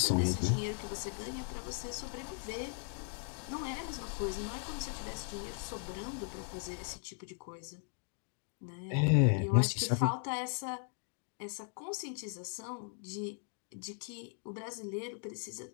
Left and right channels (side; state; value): right; silent; 53 dB below the other